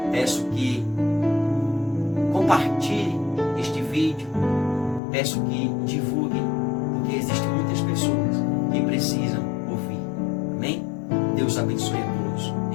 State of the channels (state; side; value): drops out; right; at 5.0 s